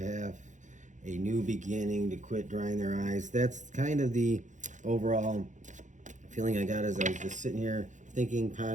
a new beginning, to quit drying their eyes. That's kind of the overall feeling I got as I was just sitting here thinking,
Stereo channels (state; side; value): late; left; 0.36 ms